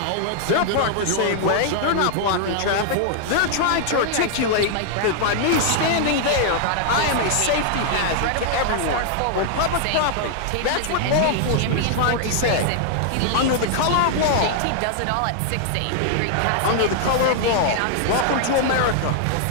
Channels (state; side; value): different; both; correlation -0.01